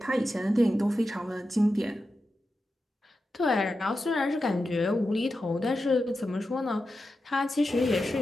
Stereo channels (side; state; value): both; normal; correlation 0.90